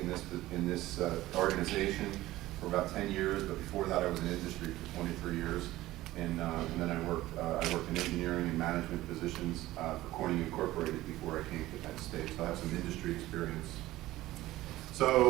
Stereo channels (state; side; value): quieter; left; 16.6 dB